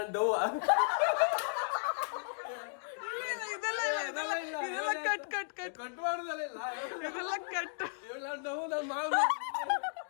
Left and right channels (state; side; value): silent; right; digital silence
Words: ಡೌ ಇದೆಲ್ಲ ಕಟ್ ಕಟ್ ಕಟ್ ಕಟ್ ಮಾಡುದಲ್ಲ ಇದೆಲ್ಲ ಕಟ್ ಡೌ ನಾನು ಮಾಡ